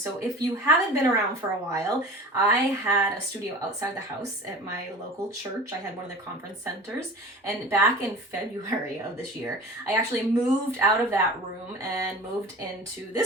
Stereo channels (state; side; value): normal; both; correlation 0.38